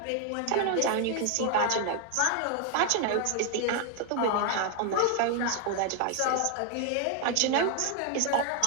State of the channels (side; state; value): both; different; correlation 0.00